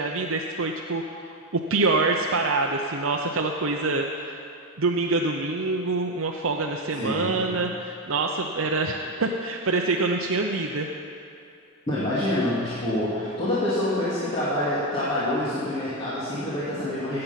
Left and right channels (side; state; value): both; normal; correlation 0.10